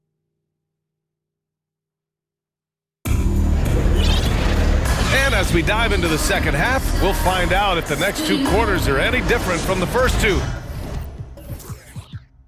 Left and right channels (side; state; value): both; identical; correlation 1.00